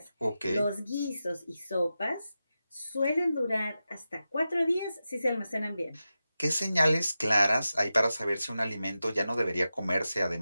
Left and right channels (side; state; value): both; inverted; correlation -0.92